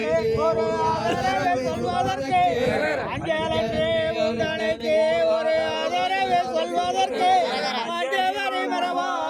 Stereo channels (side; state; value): both; identical; correlation 1.00